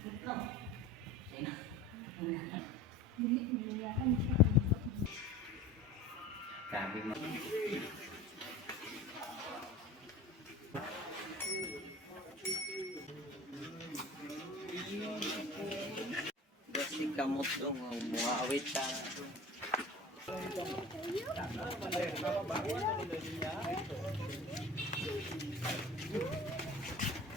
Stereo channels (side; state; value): both; normal; correlation 0.38